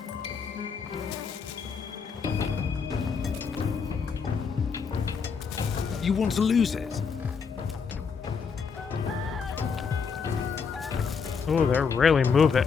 You want to lose it? Oh, they're really moving.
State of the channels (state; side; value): quieter; right; 5.8 dB